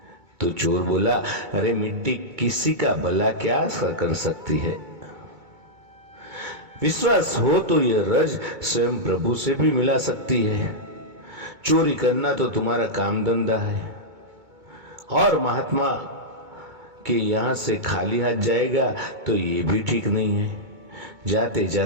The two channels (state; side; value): late; left; 2.2 ms